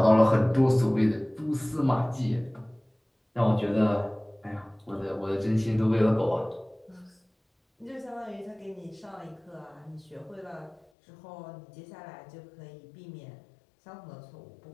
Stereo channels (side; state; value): right; drops out; at 10.9 s